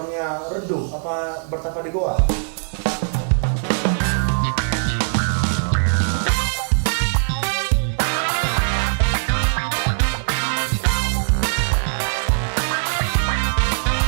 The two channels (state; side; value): silent; left; digital silence